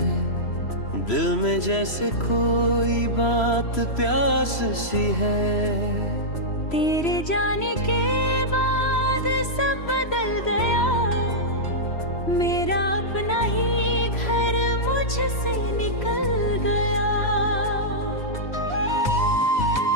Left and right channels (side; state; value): right; late; 3.0 ms